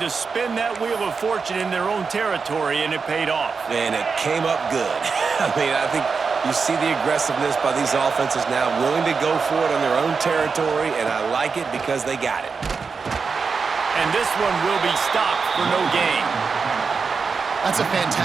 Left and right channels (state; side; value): quieter; left; 5.1 dB